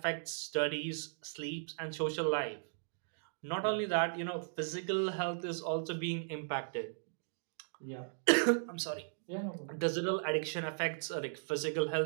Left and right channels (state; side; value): silent; left; digital silence